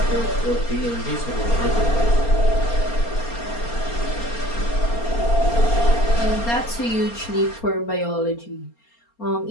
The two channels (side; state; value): right; late; 4.3 ms